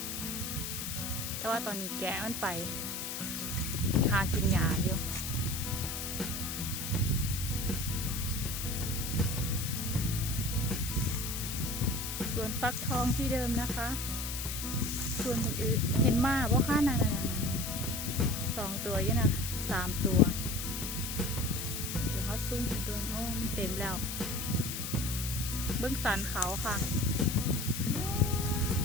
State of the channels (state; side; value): noise; left; hiss, 4 dB below the sound